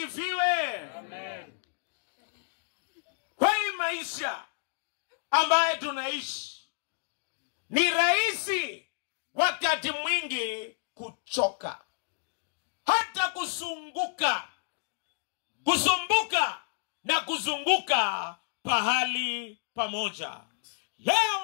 Amen. Kwa hii maisha ambaye tunaishi, ni rahisi wakati mwingi kuchoka, hata kusumbuka na kuzunguka pahali pamoja.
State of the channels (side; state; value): right; silent; digital silence